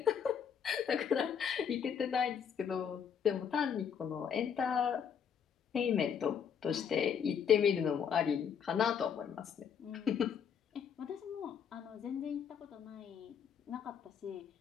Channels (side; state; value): right; quieter; 7.6 dB